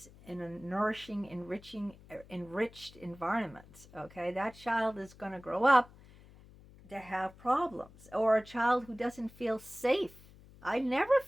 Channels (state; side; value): noise; left; hum, 22 dB below the sound